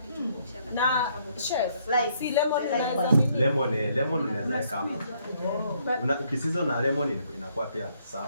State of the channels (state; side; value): inverted; both; correlation -0.69